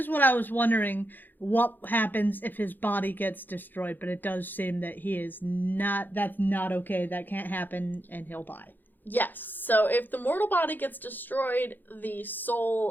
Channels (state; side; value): late; right; 0.088 ms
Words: what I was wondering, what happens if his body gets destroyed, but it does seem that that's not okay, that can't happen, and he'll die. Yes, so if the mortal body gets destroyed, the